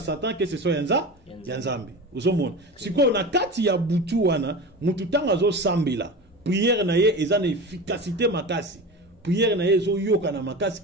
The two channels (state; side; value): normal; both; correlation 0.29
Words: que ce soit Nzambe. Uzomona. Siko na kati ya butu wana mutu tanga zo sambela. Prière na ye eza na efficacité makasi. Prière na ye zo yoka na makasi